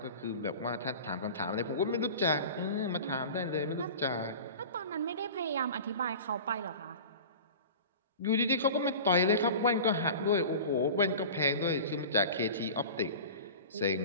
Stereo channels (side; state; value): both; inverted; correlation -0.36